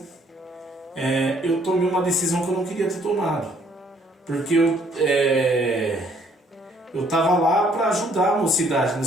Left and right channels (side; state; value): both; normal; correlation 0.64